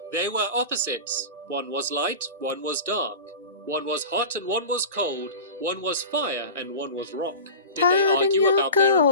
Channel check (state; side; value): inverted; both; correlation -0.33